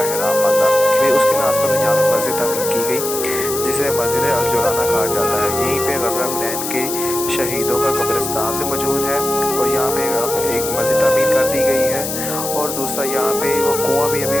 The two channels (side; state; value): left; noise; hiss, 5 dB below the sound